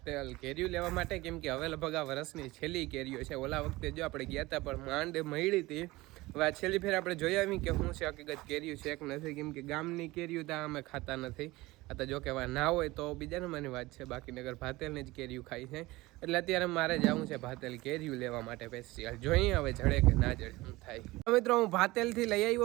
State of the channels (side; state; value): left; quieter; 20.1 dB